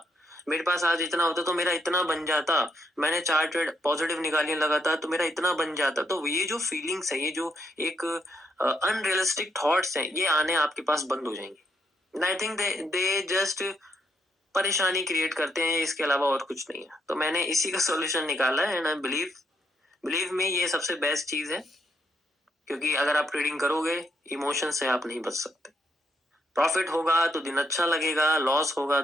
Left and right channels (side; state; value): both; normal; correlation 0.76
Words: मेरे पास आज इतना होता तो मेरा इतना बन जाता, मैंने 4 ट्रेड पॉजिटिव निकालने लगा था तो मेरा इतना बन जाता। तो ये जो फीलिंग्स है, ये जो एक अनरियलिस्टिक थॉट्स हैं, ये आने आपके पास बंद हो जाएंगे। आई थिंक दे जस्ट परेशानी क्रिएट करते हैं, इसके अलावा और कुछ नहीं है। तो मैंने इसी का सॉल्यूशन निकाला है, एंड आई बिलीव में ये सबसे बेस्ट चीज है। क्योंकि अगर आप ट्रेडिंग करोगे, इमोशन से आप नहीं बच सकते। प्रॉफिट होगा तो दिन अच्छा लगेगा, लॉस होगा